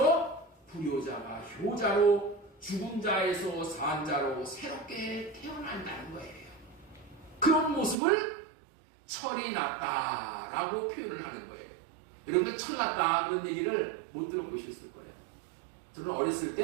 불효자가 효자로 죽은 자에서 산 자로 새롭게 태어난다는 거예요. 그런 모습을 철이 났다라고 표현을 하는 거예요. 여러분들 철 났다 그런 얘기를 못 들어보셨을 거예요. 저는 어렸을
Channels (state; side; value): drops out; left; at 8.0 s